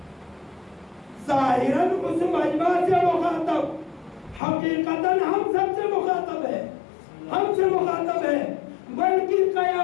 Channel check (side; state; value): right; drops out; at 4.4 s